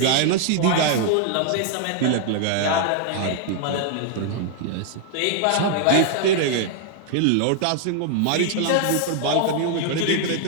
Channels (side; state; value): both; different; correlation 0.00